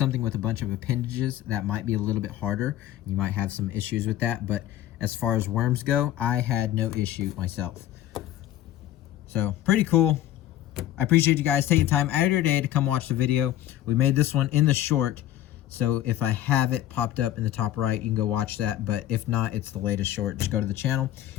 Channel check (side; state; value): right; quieter; 12.9 dB